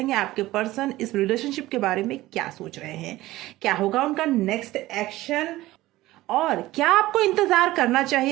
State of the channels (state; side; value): quieter; left; 17.2 dB